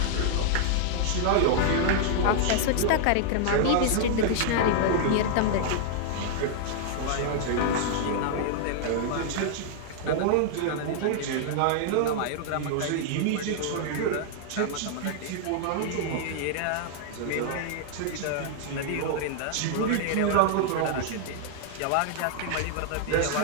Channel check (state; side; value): different; both; correlation -0.01